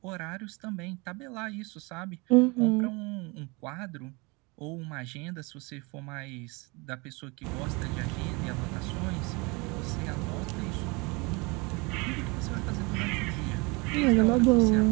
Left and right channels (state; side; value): quieter; left; 27.4 dB